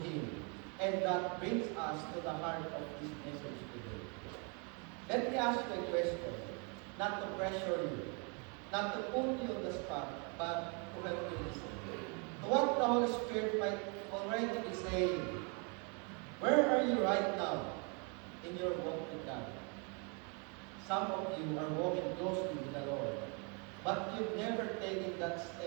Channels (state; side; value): quieter; left; 35.3 dB